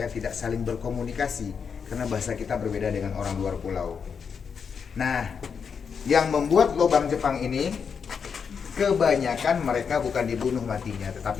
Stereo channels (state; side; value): quieter; right; 6.4 dB